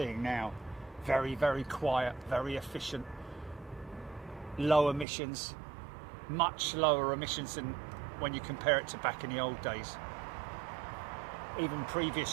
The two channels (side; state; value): left; drops out; at 5.1 s